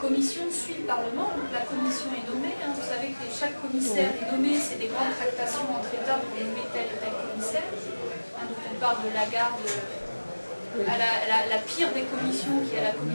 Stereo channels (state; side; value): inverted; both; correlation -1.00